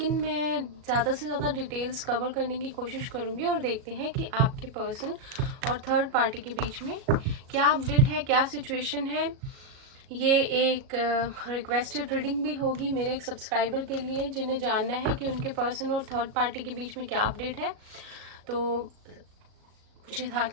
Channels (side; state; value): left; late; 37 ms